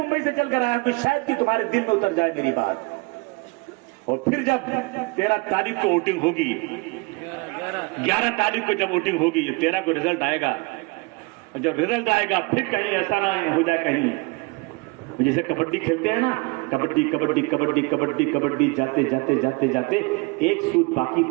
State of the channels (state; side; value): quieter; left; 27.8 dB